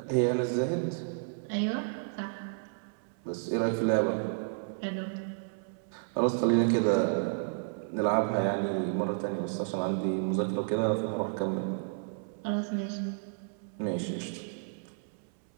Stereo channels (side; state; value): left; silent; 57 dB below the other